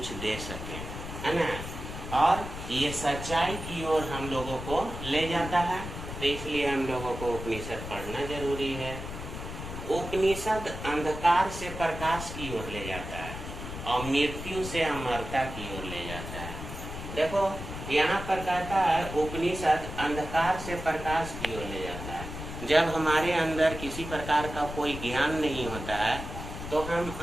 दे सकें, है ना। और ये सच्चाई की ओर हम लोगों को ले जाता है। तो इसलिए हम लोगों को उपनिषद पढ़ना जरूरी है। उपनिषद अंधकार से प्रकाश की ओर ले जाता है और मृत्यु से अमरता की ओर ले जाता है। देखो यहाँ पर कहता है उपनिषद अंधकार से प्रकाश की ओर ले जाता है। जब हमारे अंदर किसी प्रकार का कोई ज्ञान नहीं होता है तो हम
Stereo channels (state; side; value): noise; left; rumble, 8 dB below the sound